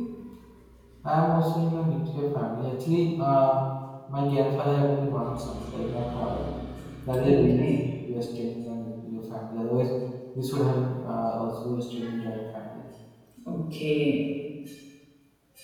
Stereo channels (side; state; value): both; identical; correlation 1.00